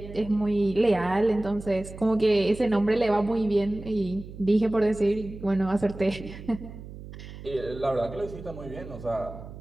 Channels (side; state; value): right; noise; hum, 14 dB below the sound